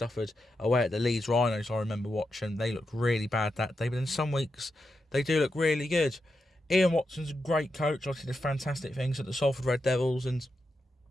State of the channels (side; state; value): both; normal; correlation 0.87